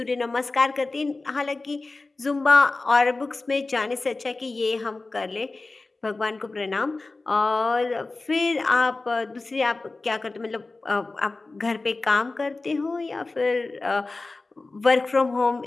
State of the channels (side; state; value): right; quieter; 3.4 dB